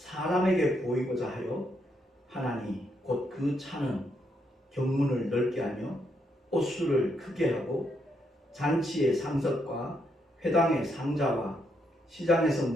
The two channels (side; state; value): both; normal; correlation 0.77